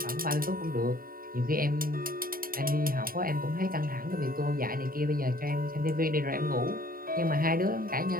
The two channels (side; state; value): left; late; 0.42 ms